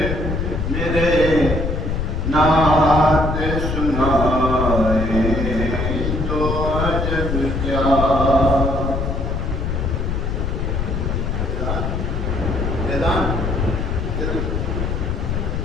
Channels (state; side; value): noise; left; rumble, 1 dB below the sound